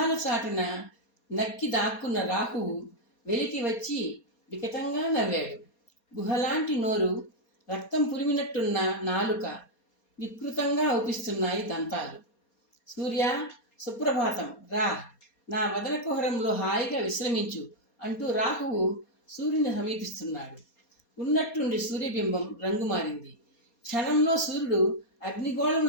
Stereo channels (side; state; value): right; late; 4.2 ms